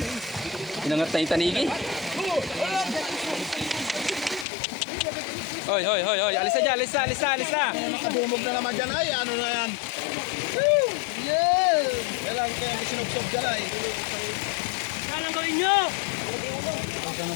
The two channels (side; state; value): right; drops out; at 4.5 s